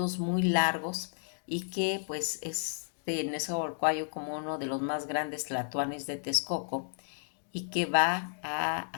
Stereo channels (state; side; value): silent; right; digital silence